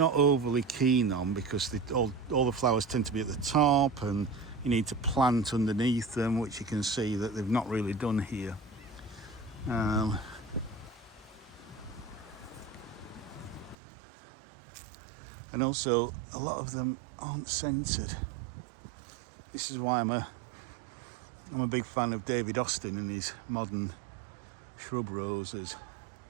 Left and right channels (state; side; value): drops out; left; at 13.8 s